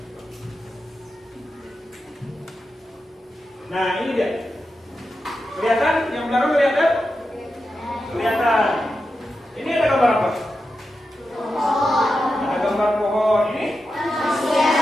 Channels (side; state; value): both; normal; correlation 0.89